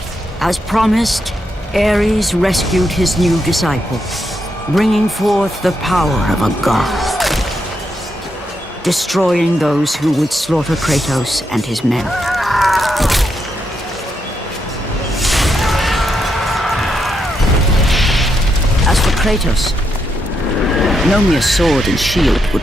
As promised, Ares rescued his new disciple, bringing forth the power of a god, destroying those who would slaughter Kratos and his men. As for Kratos, no mere sword and shield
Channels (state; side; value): normal; both; correlation 0.81